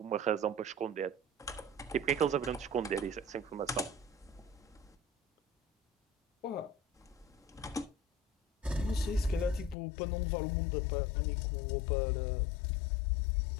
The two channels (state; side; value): drops out; right; at 9.8 s